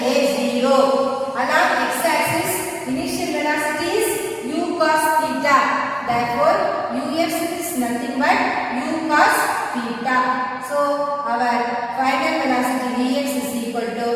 a 0. Along x-axis initial velocity is u cos theta. Therefore ux is nothing but u cos theta. So our final velocity vx is equal to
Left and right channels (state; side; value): identical; both; correlation 1.00